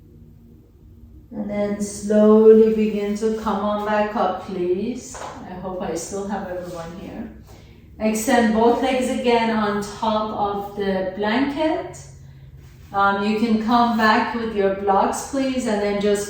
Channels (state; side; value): identical; both; correlation 1.00